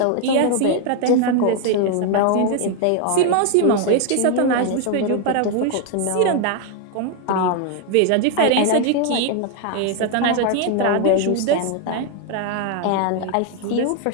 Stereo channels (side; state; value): both; different; correlation 0.00